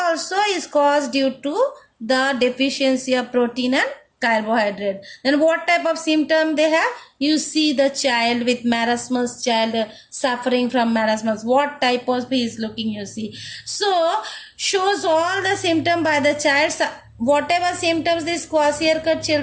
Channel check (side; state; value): both; identical; correlation 1.00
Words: is caused due to the deficiency of protein and carbohydrate. Then what type of symptom they have? You see the child with marasmus, child suffering from marasmus. What type of he is looking, you see. So shows all the symptom by the child. Whatever symptoms these kwashiorkor